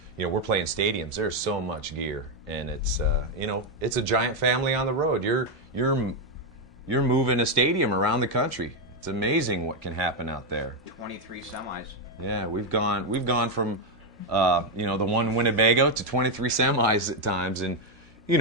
You know, we're playing stadiums. There's so much gear, and it's you know, it's a giant family on the road. You're moving a stadium around the country. It's amazing what can happen out there. 23 semis. Yeah, we've gone from you know, the one Winnebago to 23 semis at times, and you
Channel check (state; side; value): normal; both; correlation 0.04